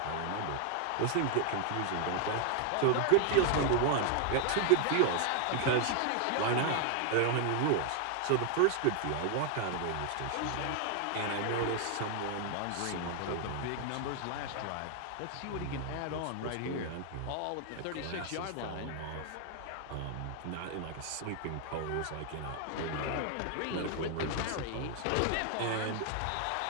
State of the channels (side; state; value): both; different; correlation 0.00